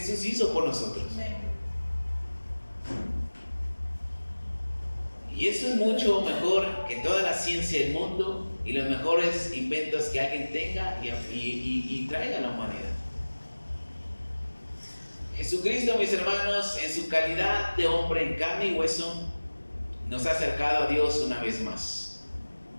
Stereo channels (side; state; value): both; inverted; correlation -1.00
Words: hizo por nosotros. Y eso es mucho mejor que toda la ciencia del mundo y los mejores inventos que alguien tenga y traiga a la humanidad. Jesucristo, mis hermanos, en su calidad de hombre en carne y hueso, nos ha acercado a Dios una vez más.